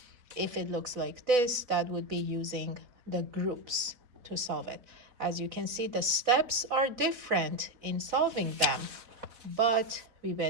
If it looks like this, that would be using the groups to solve it. As you can see, the steps are different in solving them, but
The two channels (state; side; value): late; left; 4.0 ms